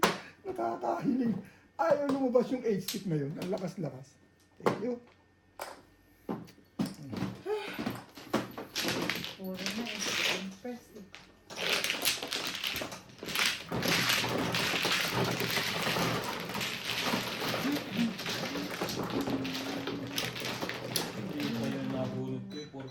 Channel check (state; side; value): identical; both; correlation 1.00